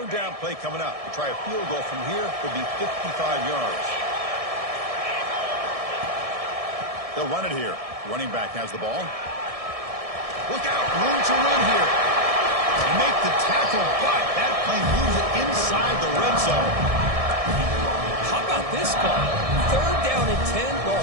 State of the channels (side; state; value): left; late; 1.6 ms